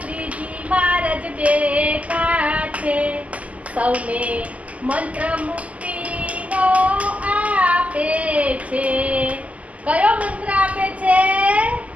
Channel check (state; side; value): late; left; 0.070 ms